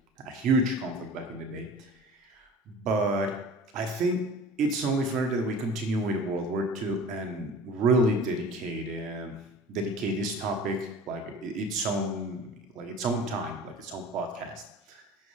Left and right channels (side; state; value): both; normal; correlation 0.41